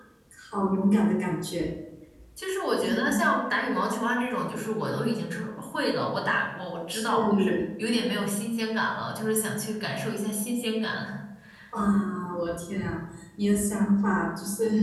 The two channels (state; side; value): identical; both; correlation 1.00